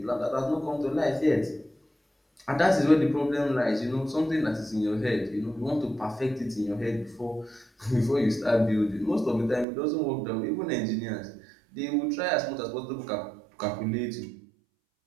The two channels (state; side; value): drops out; left; at 9.7 s